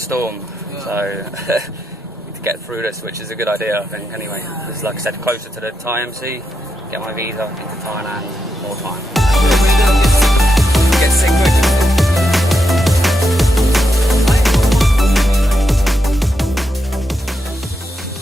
Yeah. So need to get through this, which is a good idea, I think. Anyway, this is, like I said, closer to the Thai MC. Get my visa into Thailand. More time. Get sick quick.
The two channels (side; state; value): both; normal; correlation 0.84